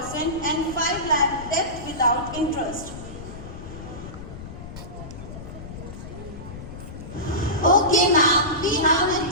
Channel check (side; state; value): left; noise; rumble, 12 dB below the sound